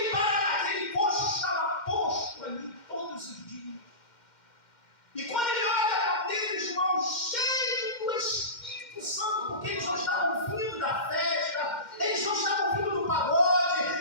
coxo estava posto ali todos os dias. E quando ele olha para Pedro e João, cheio do Espírito Santo, porque eles não estavam vindo da festa, eles não estavam vindo do pagode,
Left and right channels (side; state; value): right; late; 2.1 ms